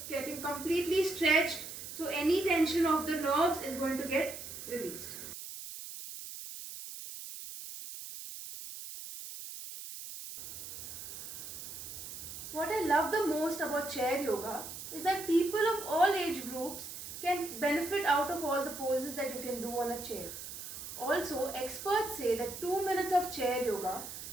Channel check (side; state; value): right; noise; hiss, 10 dB below the sound